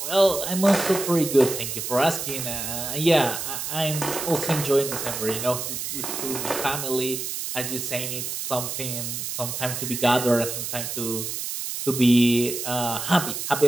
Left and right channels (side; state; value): right; noise; hiss, 4 dB below the sound